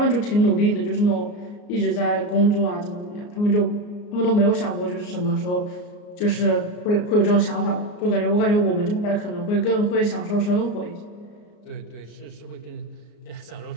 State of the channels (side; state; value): right; late; 34 ms